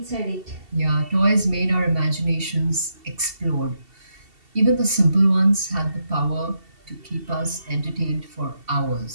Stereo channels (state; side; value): late; left; 2.7 ms